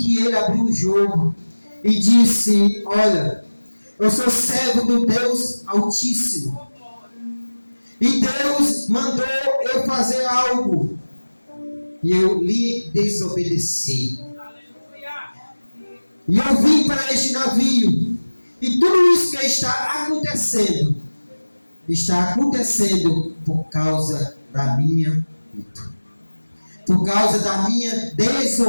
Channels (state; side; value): inverted; both; correlation -1.00